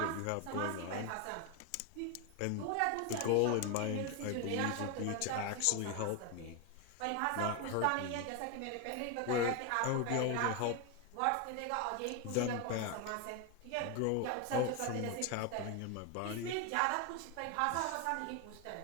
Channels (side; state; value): both; different; correlation 0.01